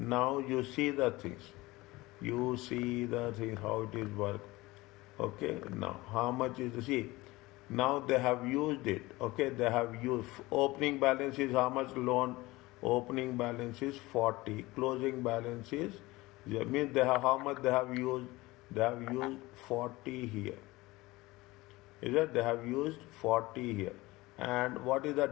you see the things. You see the thing, how it is work. Okay, now how much is the, see, now they have used it. Okay, they have used, opening balance is how much loan? Opening balance is 40, closing balance is, means they have, how much they have used? They have used 40 here. Is that they have used 40 here. And what is the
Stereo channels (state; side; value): quieter; right; 20.4 dB